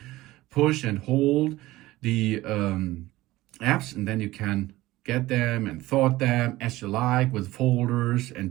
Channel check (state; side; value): quieter; left; 17.7 dB